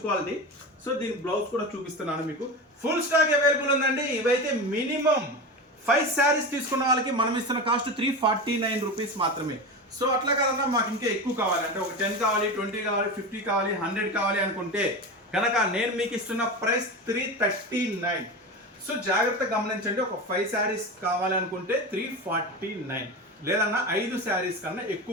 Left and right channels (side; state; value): both; normal; correlation 0.24